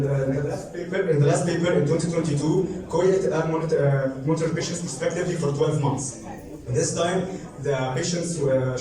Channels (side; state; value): both; identical; correlation 1.00